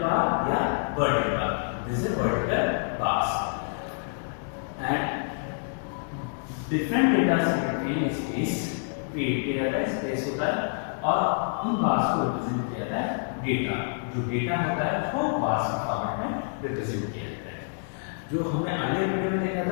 bar या vertical bar. This is vertical bars. And different data set में space create किया जाता है, space होता है और उन bars को represent किया जाता है data. जो data होता है उसको bars के फॉर्मेट में represent किया जाता है. जो हमने अगले वीडियो में देखा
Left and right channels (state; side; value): silent; right; digital silence